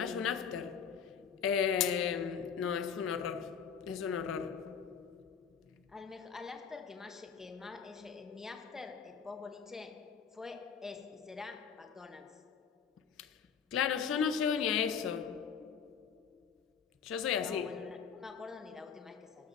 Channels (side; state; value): right; quieter; 6.9 dB